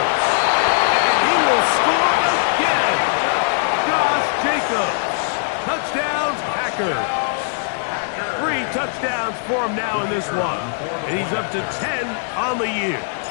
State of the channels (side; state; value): right; silent; digital silence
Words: And he will score again. Josh Jacobs. Touchdowns, Packers. 3 touchdowns for him now in this one. And he's up to 10 on the year.